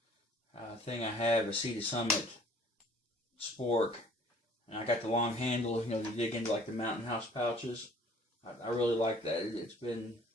thing I have, a Sea to Summit spork. And I got the long handle, you know, to dig into like the Mountain House pouches. I really like that. It's been,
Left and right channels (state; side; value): normal; both; correlation 0.54